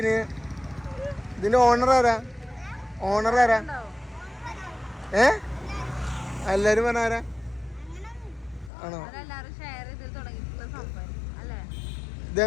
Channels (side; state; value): right; drops out; at 8.7 s